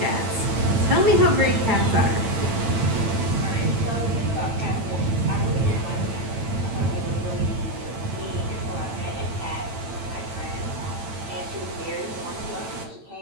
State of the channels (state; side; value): late; left; 9.0 ms